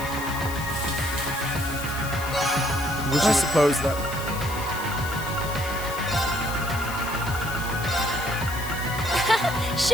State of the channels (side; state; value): left; noise; hiss, 11 dB below the sound